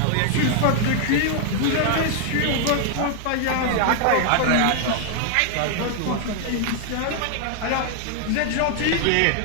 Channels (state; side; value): different; both; correlation 0.00